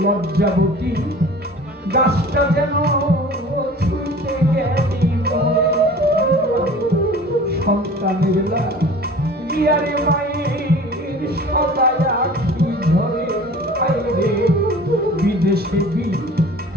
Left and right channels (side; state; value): both; normal; correlation 0.43